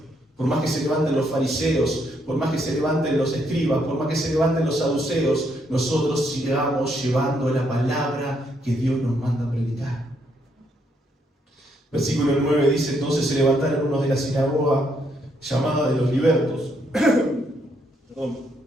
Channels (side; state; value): both; normal; correlation 0.74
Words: Por más que se levanten los fariseos, por más que se levanten los escribas, por más que se levanten los saduceos, nosotros sigamos llevando la palabra que Dios nos manda a predicar. Versículo 9 dice: entonces se levantaron unos de la sinagoga llamada de los libertos,